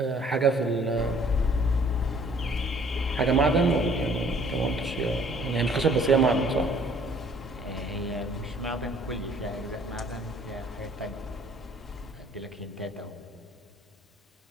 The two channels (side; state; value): both; normal; correlation 0.57